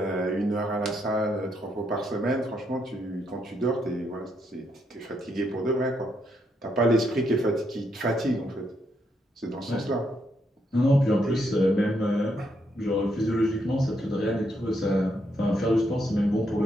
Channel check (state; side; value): normal; both; correlation 0.77